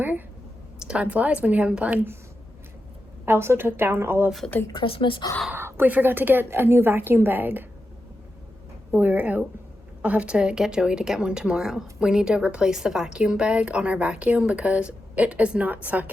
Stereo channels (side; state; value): both; normal; correlation 0.89